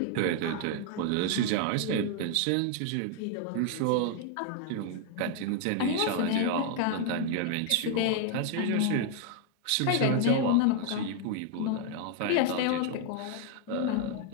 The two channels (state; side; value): different; both; correlation 0.00